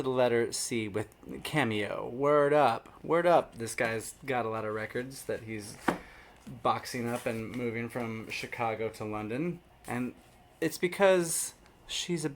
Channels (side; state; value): both; identical; correlation 1.00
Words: the letter C with Cameo. Word up. Word up. This guy's got a lot of records that he's boxing up and moving from Chicago to London. And it's because she's a